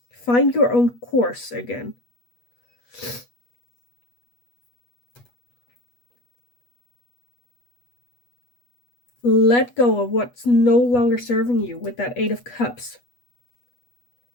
Find your own course again. Let go of what's no longer serving you with that 8 of Cups.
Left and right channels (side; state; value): right; late; 8.2 ms